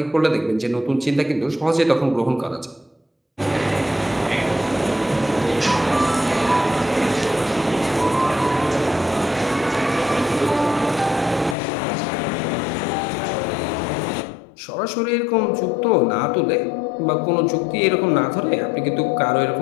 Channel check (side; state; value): right; drops out; at 11.6 s